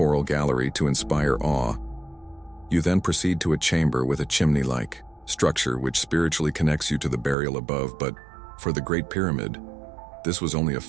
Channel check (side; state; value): left; drops out; at 7.4 s